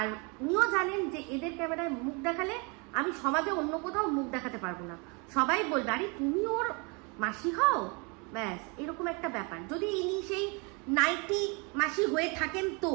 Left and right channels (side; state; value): left; quieter; 31.4 dB